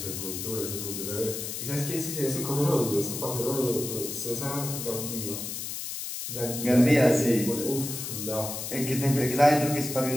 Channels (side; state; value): left; noise; hiss, 6 dB below the sound